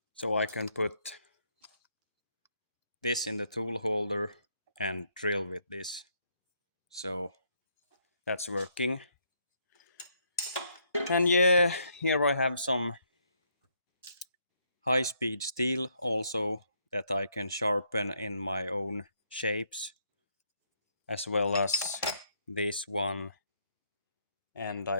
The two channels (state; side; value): inverted; both; correlation -0.72